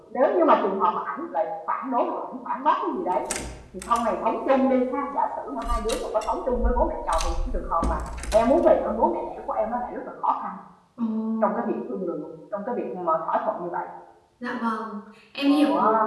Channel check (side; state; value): both; identical; correlation 1.00